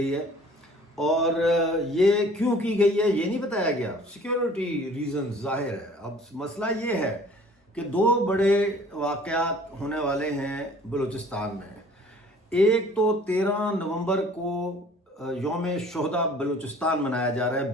ہے، اور یہ کیوں کی گئی ہے یہ نہیں بتایا گیا۔ سیکیورٹی ریزن ظاہر ہے۔ اب مسئلہ یہ ہے کہ 2 بڑے واقعات ہونے والے ہیں بلوچستان میں۔ ایک تو 13 نومبر کو یوم شہداء بلوچستان منایا جا رہا ہے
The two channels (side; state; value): both; normal; correlation 0.52